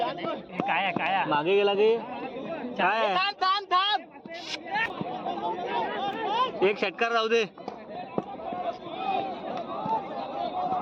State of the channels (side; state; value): both; identical; correlation 1.00